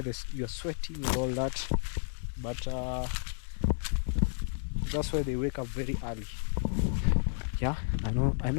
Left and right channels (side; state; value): right; silent; digital silence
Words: You're sweating and all that, but that's why they wake up very early. Yeah, I